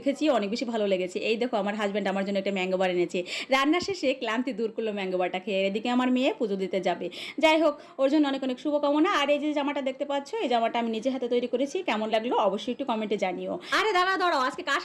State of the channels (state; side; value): identical; both; correlation 1.00